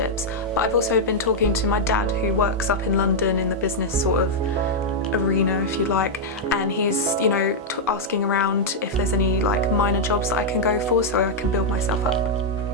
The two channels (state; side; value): normal; both; correlation -0.04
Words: but I've also been talking to my dad, who works up in London in the business sort of arena, if you like, and he's, asking around if there's any like minor jobs that I can go for so I can build myself up.